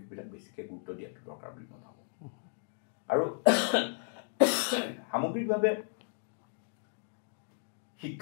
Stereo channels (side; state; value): right; silent; 55 dB below the other